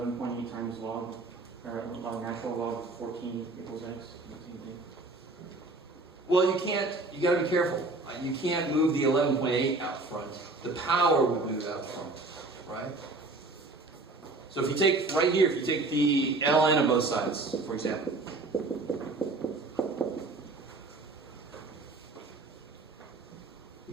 times log, or natural log of 14 equals x? Same thing. Well, you can't, you got to be careful. You can't move the 11.8 out front. The power would move out front, right? So if you take, right here, if you take the ln of both sides, for example.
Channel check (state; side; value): quieter; left; 3.3 dB